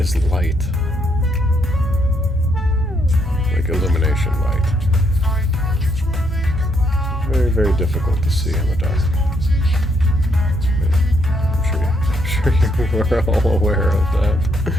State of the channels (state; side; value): normal; both; correlation 0.74